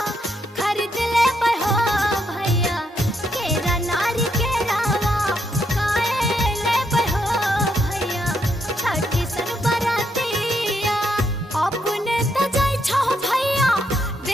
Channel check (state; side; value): normal; both; correlation 0.77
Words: खरीद ले बहो भैया केरा नारी के रावा, काहे ले बहो भैया छठी सन बरातिया। अपने त जाय छो भैया